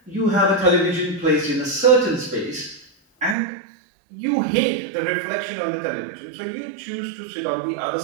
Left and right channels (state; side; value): drops out; left; at 3.4 s